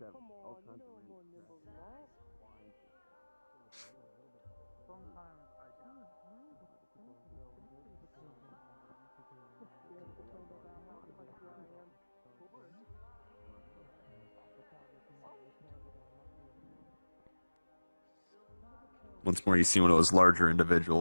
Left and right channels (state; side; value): inverted; both; correlation -1.00